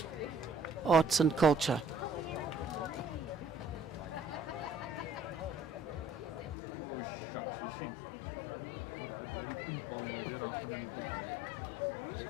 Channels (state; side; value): drops out; right; at 6.6 s